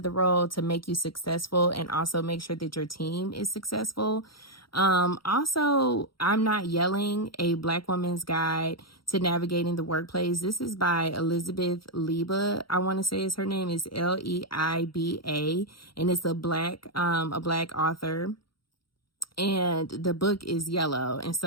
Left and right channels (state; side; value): late; right; 0.74 ms